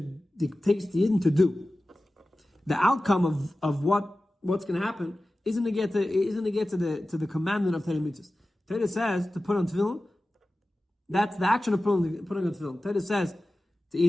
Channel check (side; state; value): both; normal; correlation 0.95